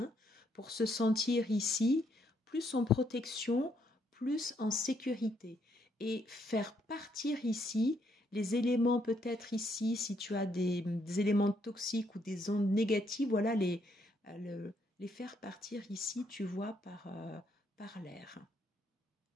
pour se sentir ici plus en protection, plus en sécurité et faire partir ici les éléments peut-être ici, si tu as des éléments toxiques ou des ondes négatives, voilà, les faire partir ici, tu vois, par l'air.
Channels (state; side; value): normal; both; correlation 0.73